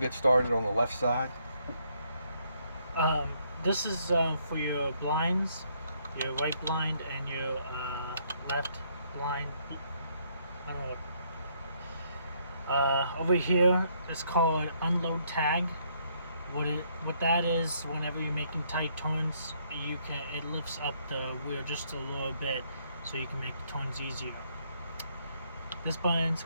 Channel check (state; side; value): inverted; both; correlation -0.70